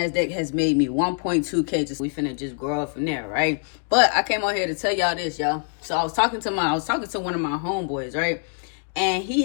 has made me 1.2K. We finna just grow up from there, right? But I came on here to tell y'all this, y'all. So I was talking to one of my homeboys, right? And he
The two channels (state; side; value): silent; right; 63 dB below the other